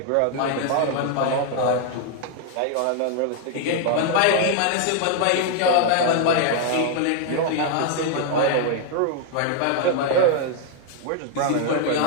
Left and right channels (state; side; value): different; both; correlation 0.00